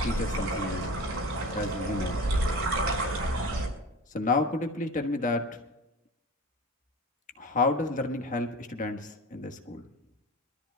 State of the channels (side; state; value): both; normal; correlation 0.34